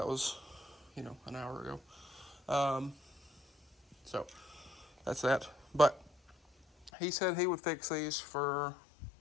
was, an hour ago. So, that's that. But he said he would fix these for,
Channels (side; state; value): right; drops out; at 6.9 s